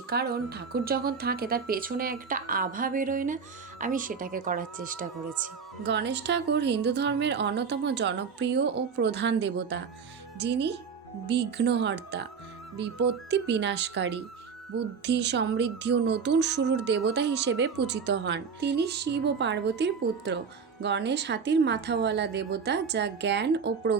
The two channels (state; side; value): quieter; left; 5.9 dB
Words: কারণ ঠাকুর যখন থাকে তার পেছনে একটা আভা বেরোয় না, আমি সেটাকে করার চেষ্টা করেছি। গণেশ ঠাকুর হিন্দু ধর্মের অন্যতম জনপ্রিয় ও প্রধান দেবতা, যিনি বিঘ্নহর্তা, বিপত্তি বিনাশকারী, বুদ্ধি, সমৃদ্ধি ও নতুন শুরুর দেবতা হিসেবে পূজিত হন। তিনি শিব ও পার্বতীর পুত্র। গণেশ হাতির মাথাওয়ালা দেবতা, যা জ্ঞান ও